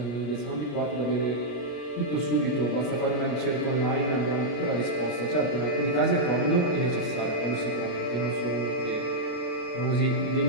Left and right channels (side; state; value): right; late; 33 ms